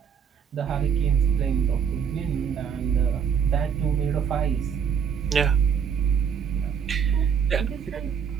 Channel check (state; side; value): quieter; left; 7.4 dB